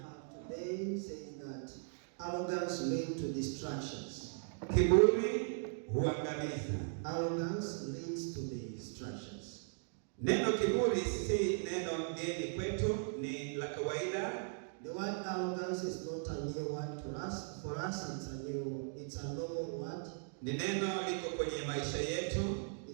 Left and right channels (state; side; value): silent; left; digital silence